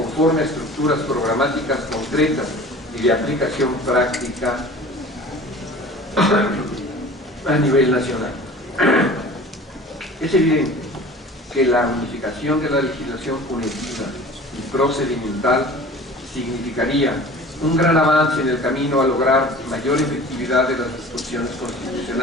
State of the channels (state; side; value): normal; both; correlation 0.42